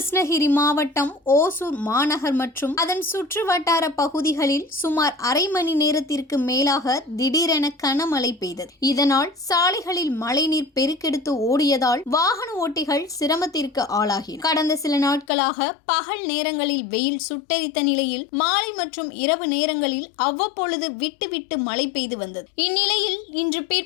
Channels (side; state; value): right; drops out; at 15.2 s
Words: மாவட்டம் ஓசூர் மாநகர் மற்றும் அதன் சுற்று வட்டார பகுதிகளில் சுமார் அரை மணி நேரத்திற்கு மேலாக திடீரென கனமழை பெய்தது. இதனால் சாலைகளில் மழைநீர் பெருக்கெடுத்து ஓடியதால் வாகன ஓட்டிகள் சிரமத்திற்கு ஆளாகினர். கடந்த சில நாட்களாக பகல் நேரங்களில் வெயில் சுட்டெரித்த நிலையில் மாலை மற்றும் இரவு நேரங்களில் அவ்வப்பொழுது விட்டு விட்டு மழை பெய்து வந்தது. இந்நிலையில் இன்று